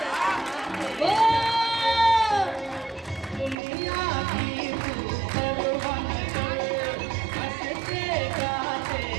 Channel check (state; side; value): drops out; left; at 3.6 s